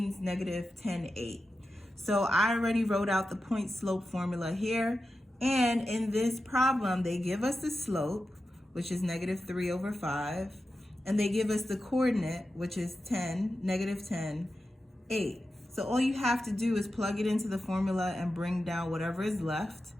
-10/8. So I already wrote out the point slope formula here, and in this problem they give us the slope, which is -3 over 5, and they give us the coordinate, which is -10/8. So all you have to do is plug it into the formula and bring down whatever is left.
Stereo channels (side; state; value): both; normal; correlation 0.91